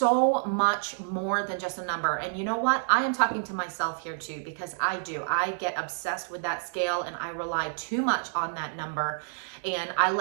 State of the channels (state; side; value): silent; left; digital silence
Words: much more than just a number. And you know what? I am talking to myself here too, because I get obsessed with that scale and I rely too much on that number, and I